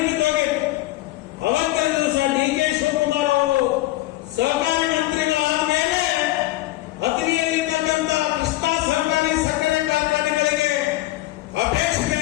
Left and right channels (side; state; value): right; quieter; 17.0 dB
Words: ಬಿದ್ದೋಗಿತ್ತು. ಅವತ್ತಿನ ದಿವಸ ಡಿ ಕೆ ಶಿವಕುಮಾರ್ ಅವರು ಸಹಕಾರಿ ಮಂತ್ರಿಗಳಾದ ಮೇಲೆ ಹತ್ತನೆಯಲ್ಲಿರ್ತಕ್ಕಂಥ ಕೃಷ್ಣ ಸಹಕಾರಿ ಸಕ್ಕರೆ ಕಾರ್ಖಾನೆಗಳಿಗೆ ಅಪೇಕ್ಷೆ